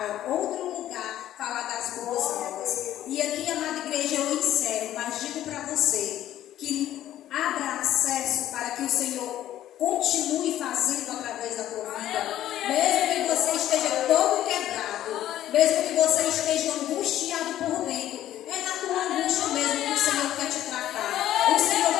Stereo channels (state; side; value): quieter; right; 12.7 dB